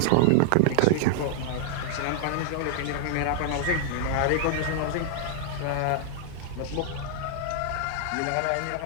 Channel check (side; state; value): both; different; correlation -0.01